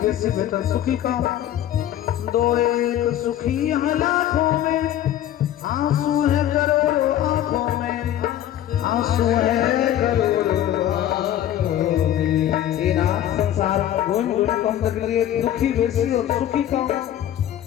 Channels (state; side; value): quieter; right; 11.8 dB